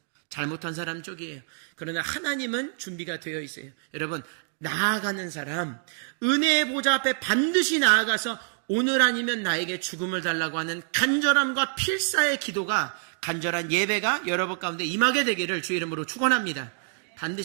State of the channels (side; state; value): left; silent; 60 dB below the other